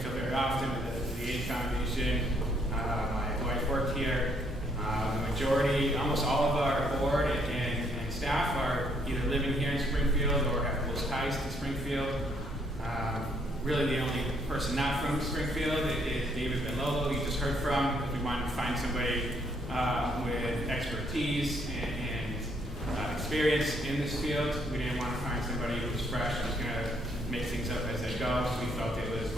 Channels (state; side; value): normal; both; correlation 0.69